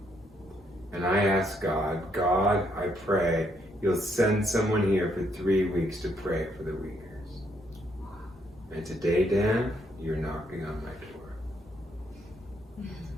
And I asked God, God, I pray you'll send someone here for 3 weeks to pray for the Uyghurs. And today, Dan, you're knocking on my door.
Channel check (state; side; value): normal; both; correlation 0.73